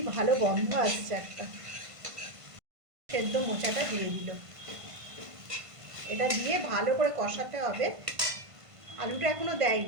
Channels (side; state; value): left; late; 1.5 ms